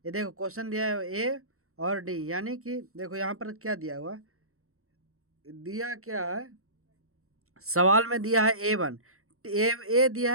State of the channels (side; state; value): left; late; 0.63 ms